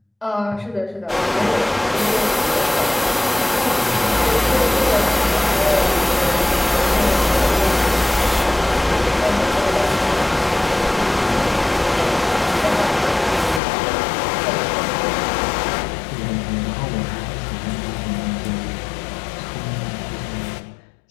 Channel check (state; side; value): drops out; right; at 13.6 s